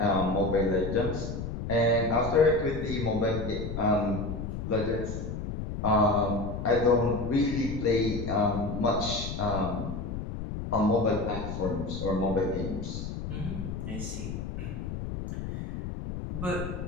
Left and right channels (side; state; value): left; noise; rumble, 5 dB below the sound